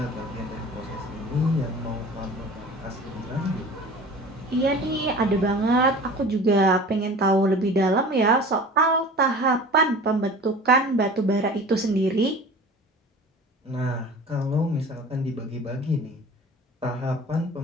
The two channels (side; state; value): both; normal; correlation 0.41